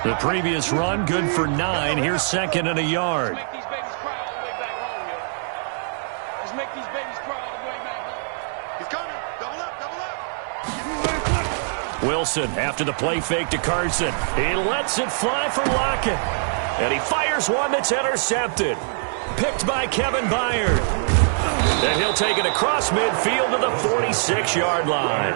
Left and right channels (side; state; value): left; silent; 63 dB below the other